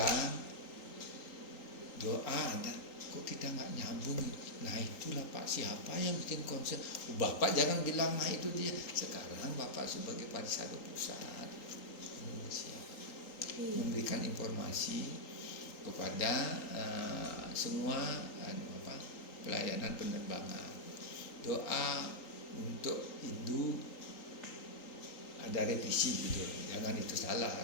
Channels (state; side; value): late; right; 3.8 ms